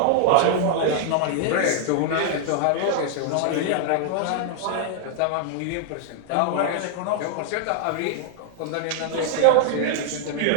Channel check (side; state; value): both; different; correlation 0.00